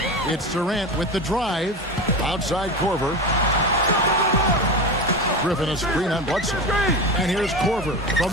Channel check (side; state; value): both; normal; correlation 0.24